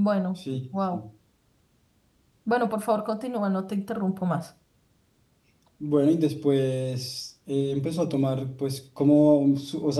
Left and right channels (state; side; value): identical; both; correlation 1.00